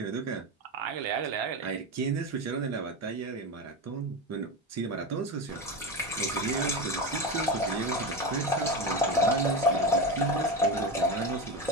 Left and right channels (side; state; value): both; normal; correlation 0.20